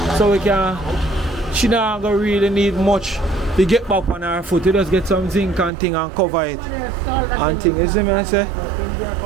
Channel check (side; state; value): left; drops out; at 5.7 s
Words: So we can, she not gonna really need much to get back on her foot. You just get some zinc and thing and cover it. And thing, you see me I say?